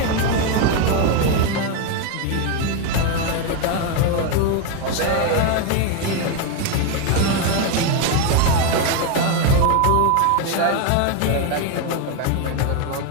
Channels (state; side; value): different; both; correlation 0.02